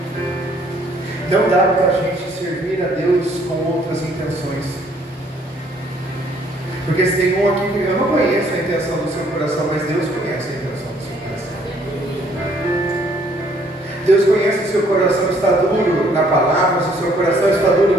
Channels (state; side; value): normal; both; correlation 0.63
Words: não dá para a gente servir a Deus com outras intenções. Porque se tem um aqui que eu não conheço a intenção do seu coração, mas Deus conhece a intenção do seu coração. Deus conhece o seu coração está duro na palavra, se o seu coração está